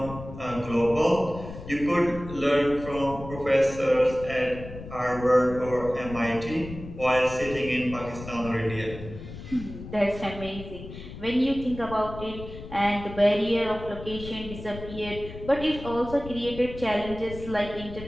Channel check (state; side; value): noise; left; rumble, 12 dB below the sound